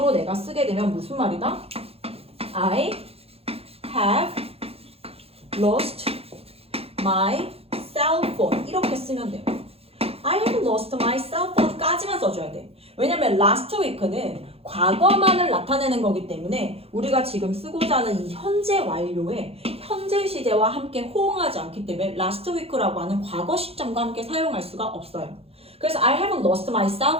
내가 쓰게 되면 무슨 말이다? I have lost my cell phone 이렇게 쓰면 돼요. I have lost my cell phone 까지만 써줘야 돼. 왜냐면 last week는 과거만을 나타내는 거기 때문에 우리가 지금 쓰고자 하는 이 현재 완료에 현재 시제와 함께 호응하지 않기 때문에 last week라고 하는 과거 시점과 함께 사용할 수가 없어요. 그래서 I haven't lost my cell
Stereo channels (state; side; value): late; left; 0.29 ms